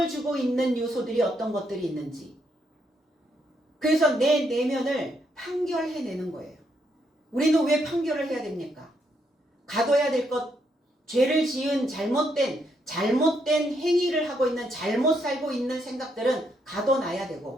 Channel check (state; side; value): normal; both; correlation 0.76